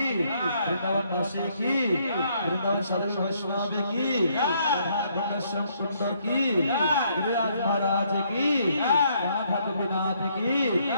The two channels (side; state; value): both; inverted; correlation -0.69